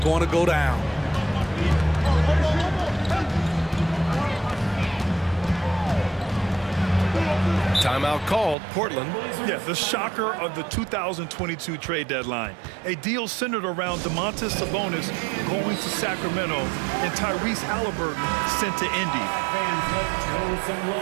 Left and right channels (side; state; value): left; drops out; at 8.6 s